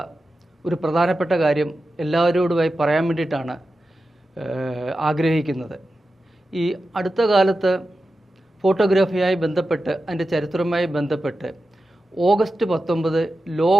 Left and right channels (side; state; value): both; normal; correlation 0.92